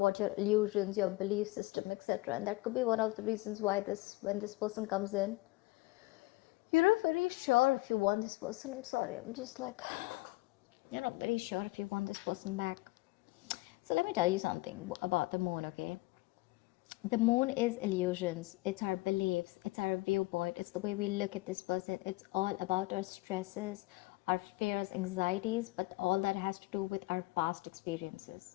your illusions, your belief system, etc. And that could be one of the reasons why when this person comes in, you're not very sure if you want this person. I'm sorry, I'm just like, you're not very sure if you want this person back. So let me tell you something about the moon, okay? The moon is illusions. It's our beliefs. It's our viewpoint. It's the way we look at this person. It's all about our stresses, our fears, anxieties, but all that has to do with our past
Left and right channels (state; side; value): quieter; right; 22.0 dB